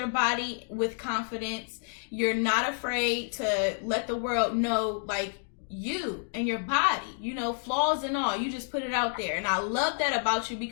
body with confidence. You're not afraid to let the world know, like, you and your body, you know, flaws and all. You just put it out there. And I love that about you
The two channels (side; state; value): right; silent; 58 dB below the other